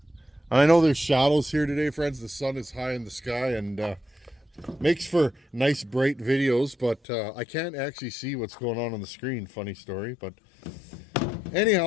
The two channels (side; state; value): right; drops out; at 7.0 s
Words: I know there's shadows here today, friends. The sun is high in the sky and makes for nice bright videos, but I can't actually see what's going on the screen. Funny story. But